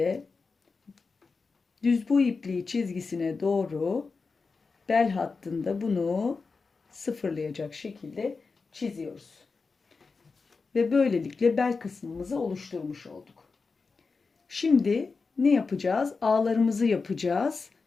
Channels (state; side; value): quieter; right; 4.5 dB